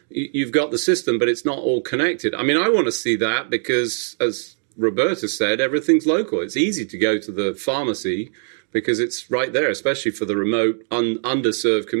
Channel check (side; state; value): left; silent; 59 dB below the other